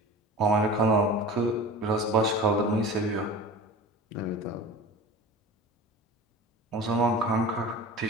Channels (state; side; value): normal; both; correlation 0.36